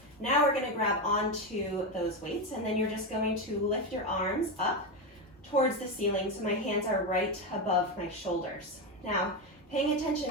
Now we're going to grab onto those weights, and then you're just going to lift your arms up towards the ceiling so my hands are right above my shoulders. Now, paying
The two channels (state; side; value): normal; both; correlation 0.12